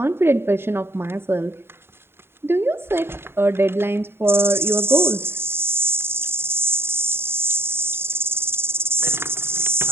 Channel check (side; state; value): left; late; 0.11 ms